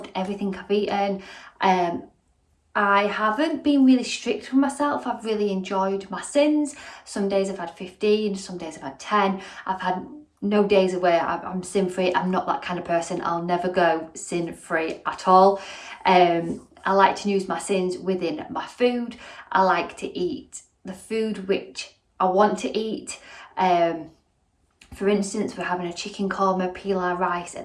everything I've eaten. I haven't been really strict with myself. I've really enjoyed my sins. Some days I've had 15, some days I've had 10. I've had no days where I'm sin free. I'm not that kind of person. I'll never go sin free at all. I like to use my sins within my food. I like to eat the food which I want to eat. For instance, we're having a chicken korma pilau rice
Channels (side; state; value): both; identical; correlation 1.00